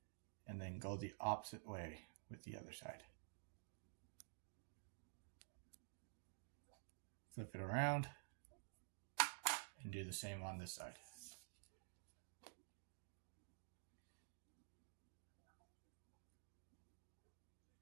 and then go the opposite way with the other side. Flip it around and do the same on this side.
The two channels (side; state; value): left; silent; digital silence